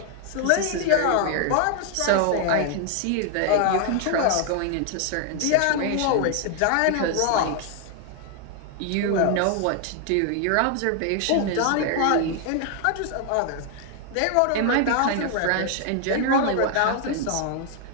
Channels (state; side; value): different; both; correlation 0.00